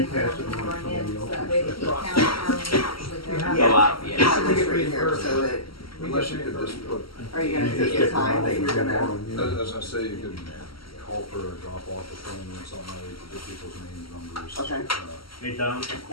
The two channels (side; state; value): right; late; 0.74 ms